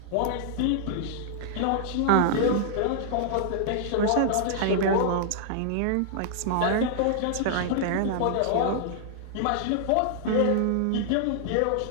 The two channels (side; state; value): both; different; correlation -0.01